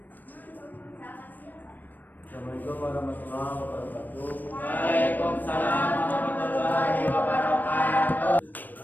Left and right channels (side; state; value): right; late; 0.088 ms